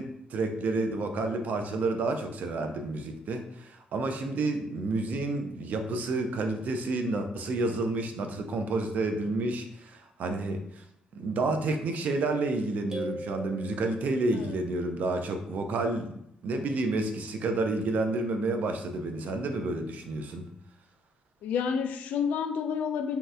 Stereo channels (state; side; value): normal; both; correlation 0.67